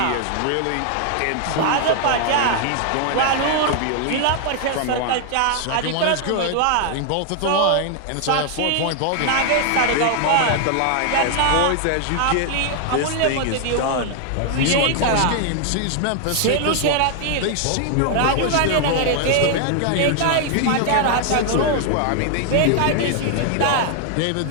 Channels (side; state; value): both; different; correlation 0.00